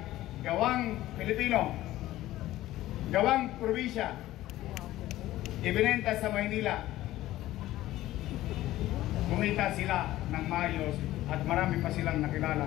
gawang Pilipino, gawang probinsya, ibinenta sa Maynila. Kumita sila ng maayos at marami pa silang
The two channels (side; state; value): right; quieter; 15.4 dB